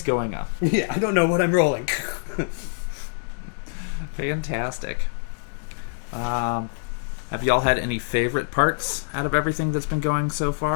going on. Yeah, I don't know what I'm rolling. Fantastic. Have y'all had any favorite parts out of everything that's been going so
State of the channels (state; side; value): silent; right; 60 dB below the other